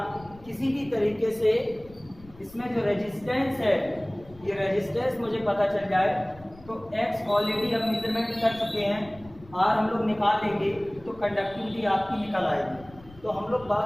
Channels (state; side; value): noise; left; rumble, 22 dB below the sound